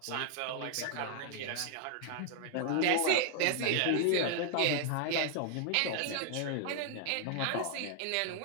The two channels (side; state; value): both; different; correlation 0.00